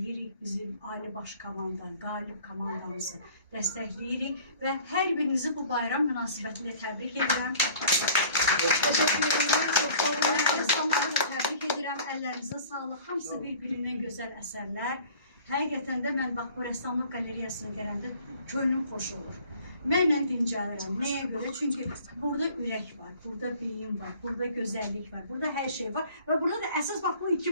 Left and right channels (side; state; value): both; inverted; correlation -0.50